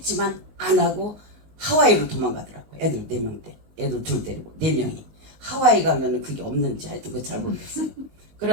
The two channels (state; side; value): late; left; 19 ms